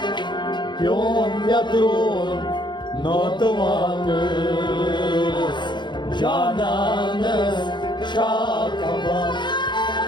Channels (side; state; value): right; late; 0.22 ms